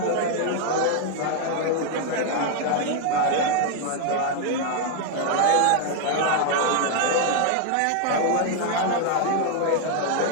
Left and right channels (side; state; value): both; different; correlation 0.00